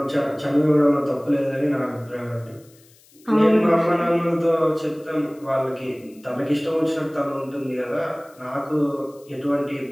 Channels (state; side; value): noise; left; hiss, 28 dB below the sound